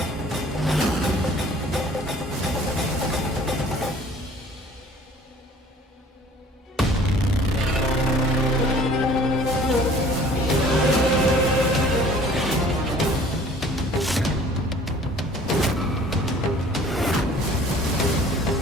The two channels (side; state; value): both; normal; correlation 0.51